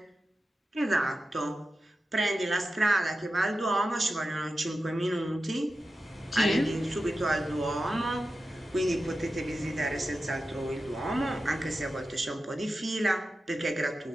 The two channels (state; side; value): normal; both; correlation 0.92